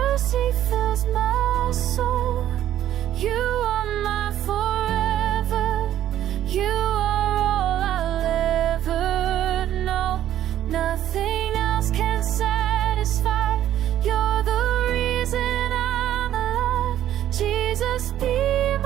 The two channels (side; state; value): left; quieter; 11.9 dB